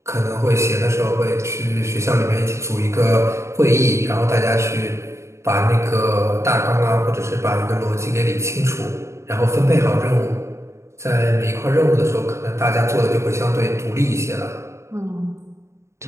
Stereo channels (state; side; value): late; left; 0.14 ms